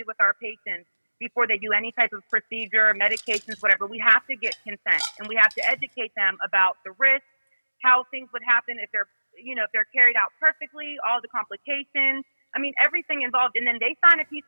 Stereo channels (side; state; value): both; inverted; correlation -1.00